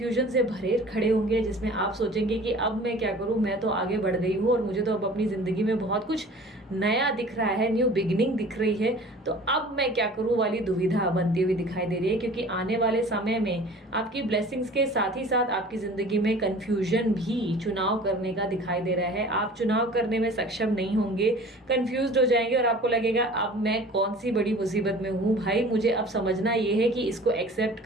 से भरे खड़े होंगे जिसमें आप सोचेंगे कि अब मैं क्या करूं, मैं तो आगे बढ़ गई हूं और मुझे तो अब अपनी जिंदगी में बहुत कुछ नया दिख रहा है, न्यू बिगिनिंग दिख रही है, तो अब मैं क्या करूं वाली दुविधा बनती हुई दिखाई दे रही है। क्योंकि आने वाले समय में आपकी ब्लेसिंग्स के साथ ही साथ आपकी जिंदगी में कंफ्यूजन भी चुनाव करने का दिखाई दे रहा है। आप चुनाव करने में सक्षम नहीं होंगे, कंफ्यूज हो जाएंगे और आपको लगेगा अब मैं कौन सी बड़ी मुसीबत में हूँ भाई, मुझे अब समझना ये है कि इसको एक्सेप्ट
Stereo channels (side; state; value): both; normal; correlation 0.44